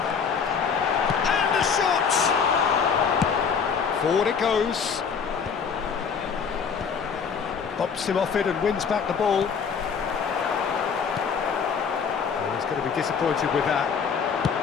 the shot! Forward it goes. Bops him off it and wins back the ball. Oh, he's going to be disappointed with that.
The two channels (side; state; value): right; quieter; 6.3 dB